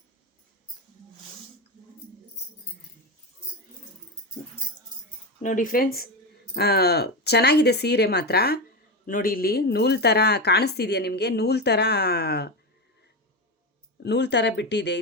ನೋಡಿ ಫ್ರೆಂಡ್ಸ್, ಚೆನ್ನಾಗಿದೆ ಸೀರೆ ಮಾತ್ರ. ನೋಡಿ, ಇಲ್ಲಿ ನೂಲು ಥರ ಕಾಣಿಸ್ತಿದೆಯಾ ನಿಮಗೆ? ನೂಲು ಥರ ಬಿಟ್ಟಿದೆ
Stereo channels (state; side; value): normal; both; correlation 0.16